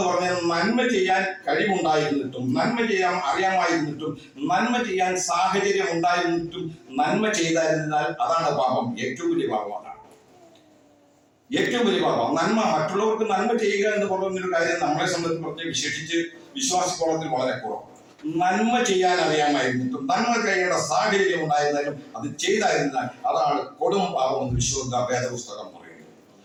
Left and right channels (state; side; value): identical; both; correlation 1.00